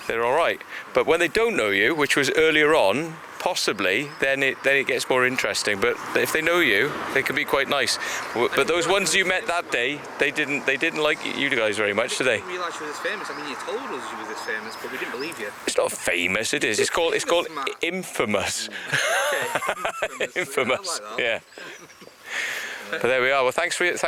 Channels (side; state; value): both; identical; correlation 1.00